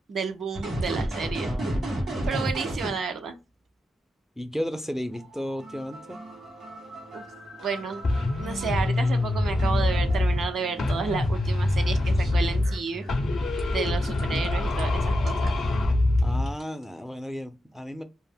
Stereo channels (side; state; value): both; normal; correlation 0.87